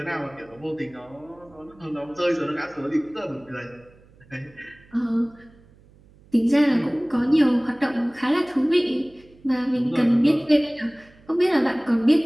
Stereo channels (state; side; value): noise; right; hum, 27 dB below the sound